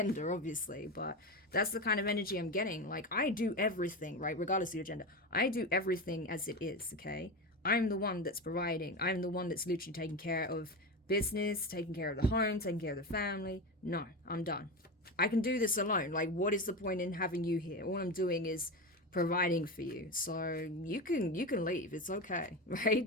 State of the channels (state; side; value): normal; both; correlation 0.21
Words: obviously, but that's the kind of energy I'm getting. Like, I do everything, right? Regardless of your gender. I do everything as it is, okay? I'm the one that's providing. I'm the one that's literally taking care of business, taking care of the home, taking care of the family. No, I'm done. I can do this alone. Like, what is the point in having you here? All I'm doing is providing for you. So you can leave. It's okay,